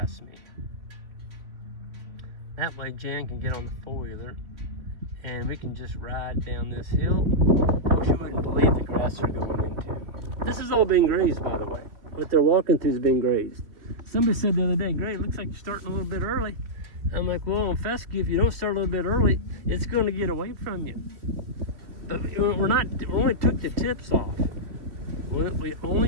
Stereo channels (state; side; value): late; left; 3.2 ms